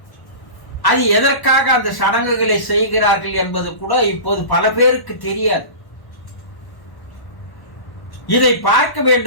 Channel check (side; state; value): right; late; 1.1 ms